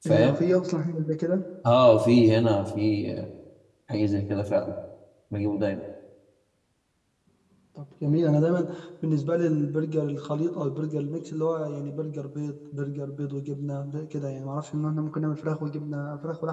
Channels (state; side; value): identical; both; correlation 1.00